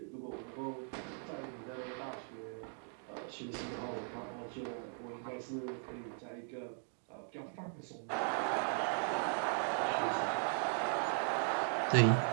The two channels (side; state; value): left; silent; 52 dB below the other